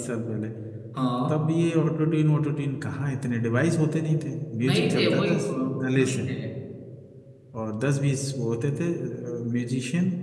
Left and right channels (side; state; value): both; identical; correlation 1.00